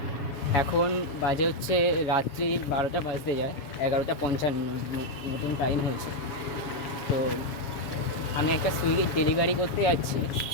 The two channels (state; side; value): late; right; 7.2 ms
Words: এখন বাজে হচ্ছে রাত্রির 12টা বাজতে যায়, 11:55 মতন টাইম হয়েছে। তো আমি একটা সুইগির ডেলিভারি করতে যাচ্ছি।